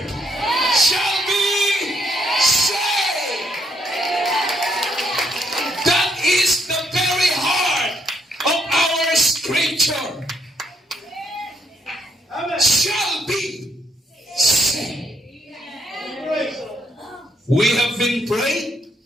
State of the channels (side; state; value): both; normal; correlation 0.73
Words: shall be saved. That is the very heart of our scripture. Shall be saved. We have been praying,